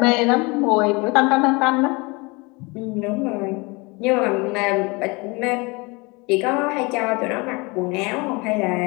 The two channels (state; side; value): quieter; right; 26.7 dB